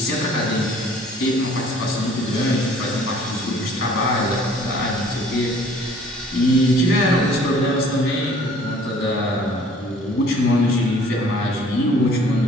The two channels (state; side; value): normal; both; correlation 0.54